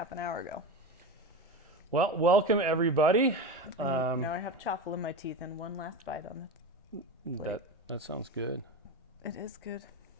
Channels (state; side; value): normal; both; correlation 0.23